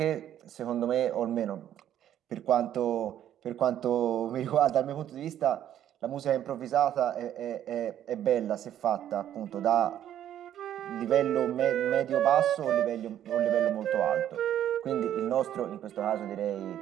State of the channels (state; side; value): quieter; left; 11.0 dB